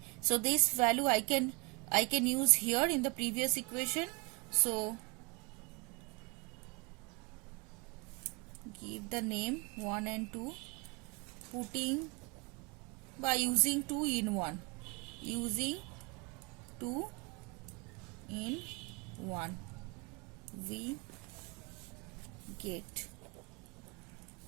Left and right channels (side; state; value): left; quieter; 30.8 dB